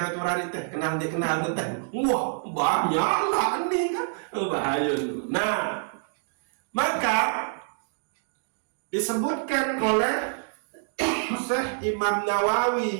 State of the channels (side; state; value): left; silent; digital silence